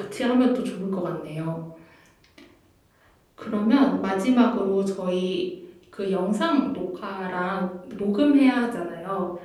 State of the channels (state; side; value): identical; both; correlation 1.00